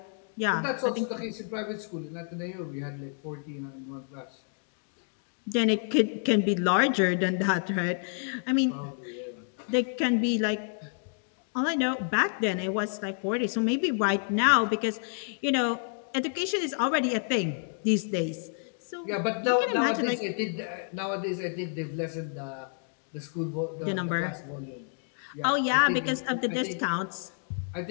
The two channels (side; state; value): right; silent; 57 dB below the other